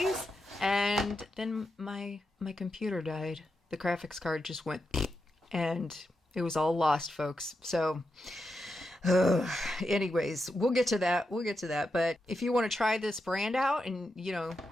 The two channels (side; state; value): both; normal; correlation 0.87